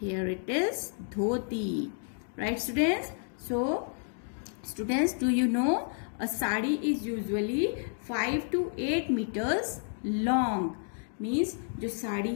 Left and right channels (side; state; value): right; silent; 57 dB below the other